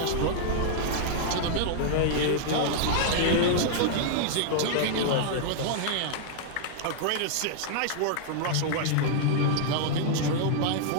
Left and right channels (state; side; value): different; both; correlation -0.01